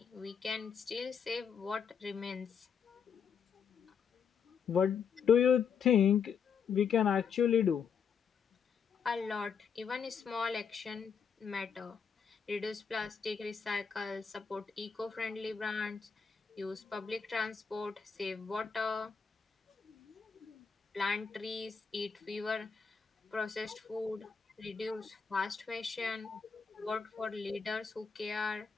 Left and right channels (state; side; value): quieter; right; 6.4 dB